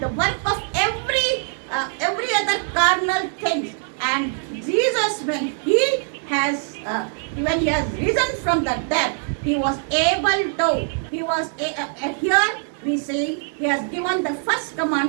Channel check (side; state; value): left; silent; 56 dB below the other